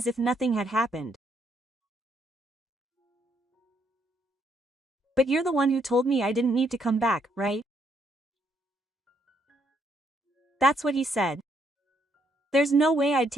if nothing had happened. But you're the one who told me I didn't need to come back, right? That's what he said. There's no way I'd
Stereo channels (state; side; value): normal; both; correlation 0.72